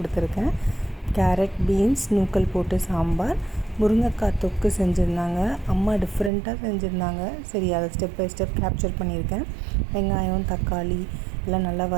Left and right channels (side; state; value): left; drops out; at 6.3 s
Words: கேரட், பீன்ஸ், நூக்கல் போட்டு சாம்பார், முருங்கைக்காய் தொக்கு செஞ்சுருந்தாங்க. அம்மா டிஃப்ரெண்ட்டாக செஞ்சுருந்தாங்க. சரி, அதை ஸ்டெப் பை ஸ்டெப் கேப்சர் பண்ணியிருக்கேன். வெங்காயம், தக்காளி எல்லாம் நல்லா